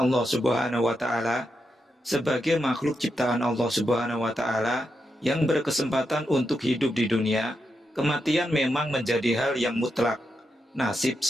Subhanahu wa Ta'ala, sebagai makhluk ciptaan Allah Subhanahu wa Ta'ala yang berkesempatan untuk hidup di dunia, kematian memang menjadi hal yang mutlak. Nasib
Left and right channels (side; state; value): both; normal; correlation 0.85